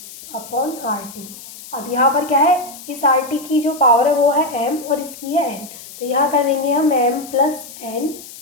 अपॉन RT। अब यहाँ पर क्या है, इस RT की जो पावर है वो है M और इसकी है N। तो यहाँ कर देंगे हम M प्लस N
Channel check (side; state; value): left; noise; hiss, 16 dB below the sound